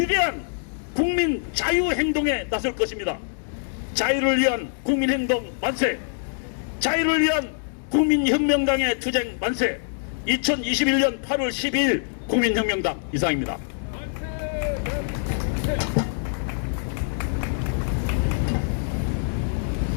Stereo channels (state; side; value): silent; right; digital silence